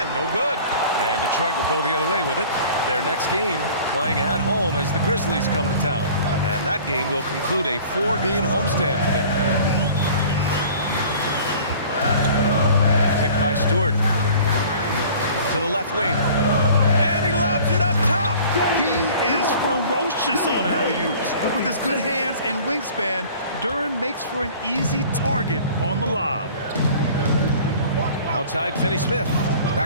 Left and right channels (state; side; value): inverted; both; correlation -0.46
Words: no good. And Detroit will go the other way with it. Their next game playing at home as the Grizzlies come to town. And that game will conclude a 4-game homestand for them. Picked by Stewart. To the left wing. And he lobs it up top. He is ferocious on alley-oops. With his good hands and wingspan, Duren makes for an easy target on the lob. Outside, Finney Smith.